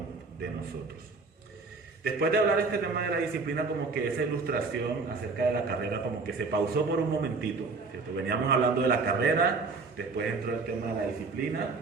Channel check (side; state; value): left; quieter; 4.2 dB